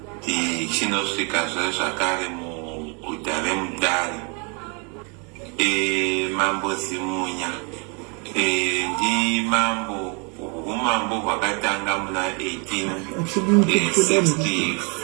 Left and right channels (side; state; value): left; quieter; 34.3 dB